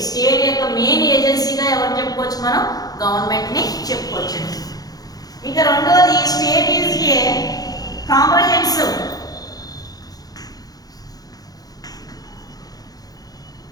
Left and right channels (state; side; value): late; right; 0.18 ms